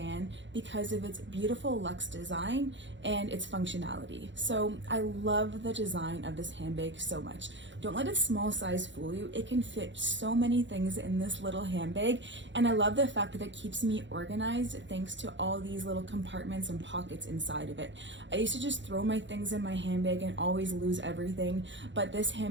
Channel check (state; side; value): late; left; 0.54 ms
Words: because of its beautiful luxe design and its functionality. So I love the design of this handbag so much. Don't let a small size fool you. It can fit so many things in this little handbag, and I love the fact that it keeps me organized thanks to all these little compartments and pockets inside of it. I used to just throw my things in my handbag and always lose everything, but this